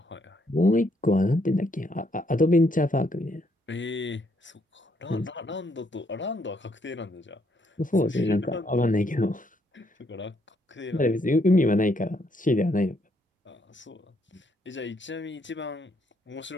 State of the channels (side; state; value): both; normal; correlation 0.72